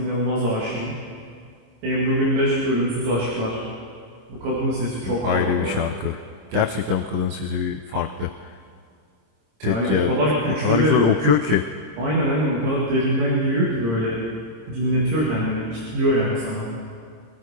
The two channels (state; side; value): late; left; 26 ms